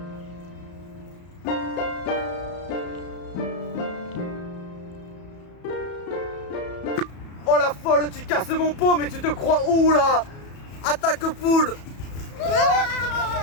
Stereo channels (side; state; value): right; late; 34 ms